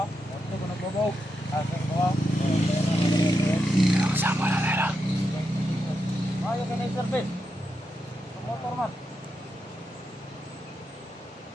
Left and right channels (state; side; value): normal; both; correlation 0.85